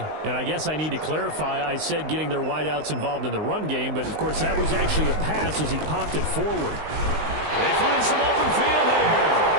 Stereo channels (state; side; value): late; left; 19 ms